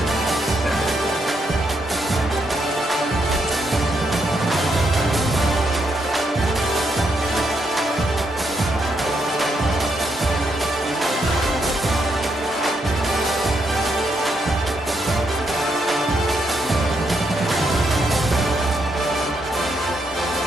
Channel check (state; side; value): normal; both; correlation 0.78